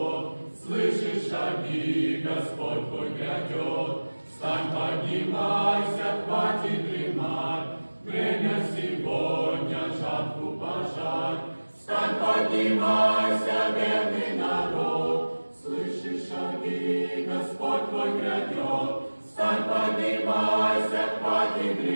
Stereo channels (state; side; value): inverted; both; correlation -1.00